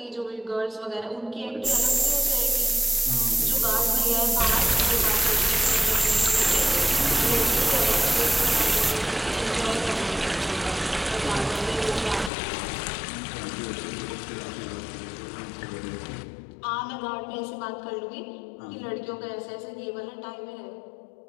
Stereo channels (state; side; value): drops out; right; at 12.3 s